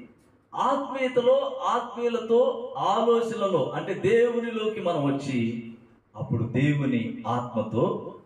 ఆత్మీయతలో, ఆత్మీయులతో, ఆలోచనలో అంటే దేవునిలోకి మనం వచ్చి అప్పుడు దేవుని ఆత్మతో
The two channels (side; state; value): both; identical; correlation 1.00